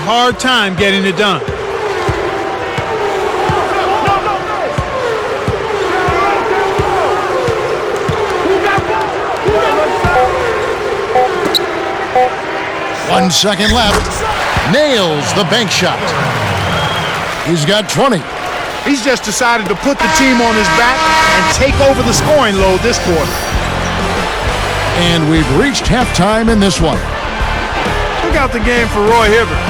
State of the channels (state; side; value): identical; both; correlation 1.00